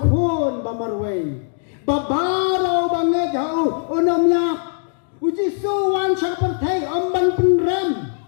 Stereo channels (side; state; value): right; silent; digital silence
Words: khon bamarwei babaro banget jauh onomnya uji suwan sapertai amban penram